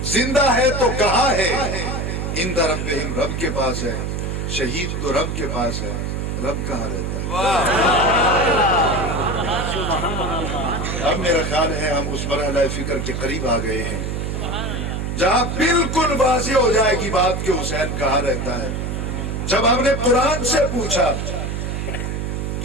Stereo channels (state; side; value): noise; right; hum, 3 dB below the sound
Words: زندہ ہے تو کہاں ہے؟ عند ربہم, رب کے پاس ہے. شہید تو رب کے پاس ہے, رب کہاں رہتا ہے؟ اب میرا خیال ہے ہم اس مرحلہ فکر کے قریب آ گئے ہیں جہاں بالکل واضح ہو جائے گی بات کہ حسین کہاں رہتا ہے. جب ہم نے قرآن سے پوچھا